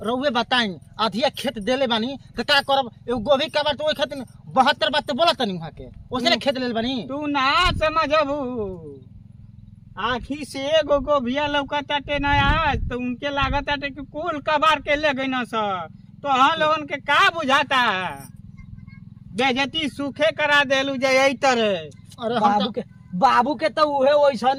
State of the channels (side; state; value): both; identical; correlation 1.00